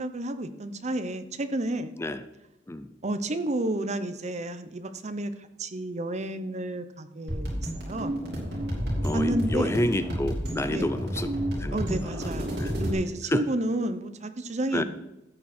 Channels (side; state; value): both; normal; correlation 0.74